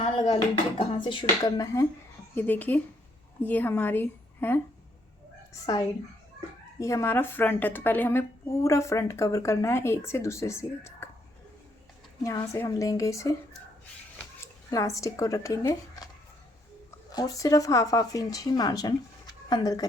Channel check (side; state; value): both; normal; correlation 0.72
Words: लगा लीजिए कहाँ से शुरू करना है। ये देखिए ये हमारी है साइड, ये हमारा फ्रंट है। तो पहले हमें पूरा फ्रंट कवर करना है एक से दूसरे सिरे तक। यहाँ से हम लेंगे इसे, इलास्टिक को रखेंगे और सिर्फ हाफ इंच ही मार्जिन अंदर